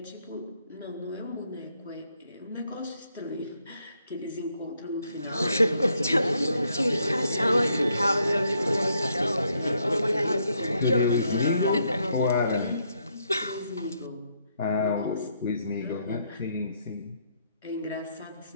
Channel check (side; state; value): both; inverted; correlation -0.75